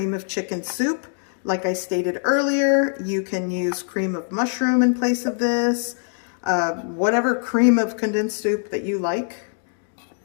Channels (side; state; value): right; silent; digital silence